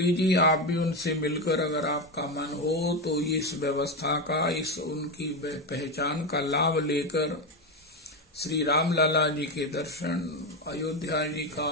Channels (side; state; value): both; normal; correlation 0.13